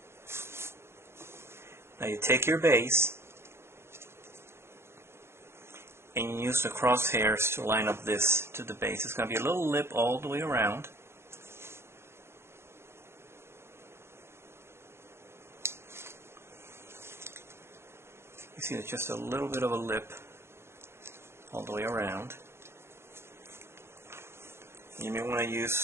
Now you take your base and you use the crosshairs to line up this to the base. It's going to be a little lip all the way around. You see there's just a little bit of a lip all the way around. You may want to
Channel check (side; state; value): left; late; 0.12 ms